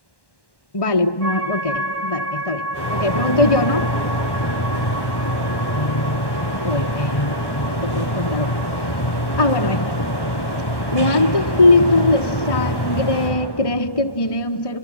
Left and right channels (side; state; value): right; late; 1.1 ms